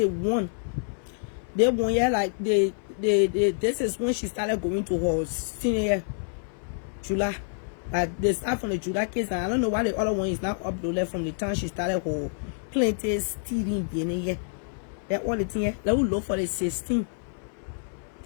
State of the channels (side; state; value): right; silent; 60 dB below the other